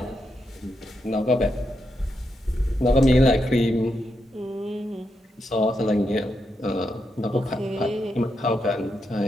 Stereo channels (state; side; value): normal; both; correlation 0.83